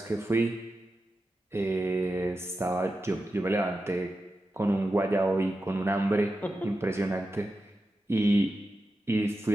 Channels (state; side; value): normal; both; correlation 0.91